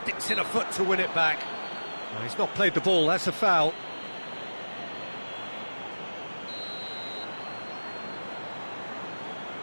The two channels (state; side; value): inverted; both; correlation -1.00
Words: in a foot to win it back. No, he's not played the ball, that's a foul.